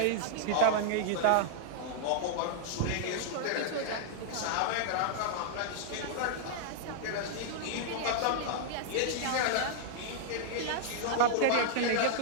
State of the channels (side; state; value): both; different; correlation -0.01